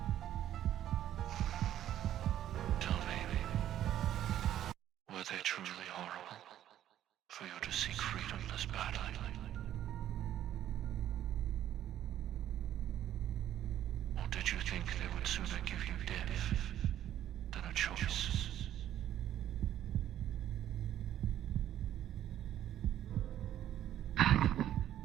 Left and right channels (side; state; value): left; quieter; 11.7 dB